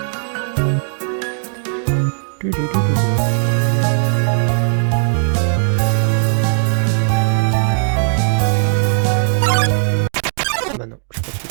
Bah non, je pas tué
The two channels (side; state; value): left; silent; digital silence